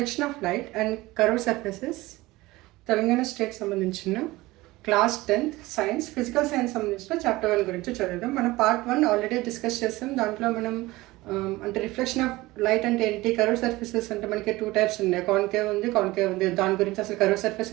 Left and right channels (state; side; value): quieter; left; 19.6 dB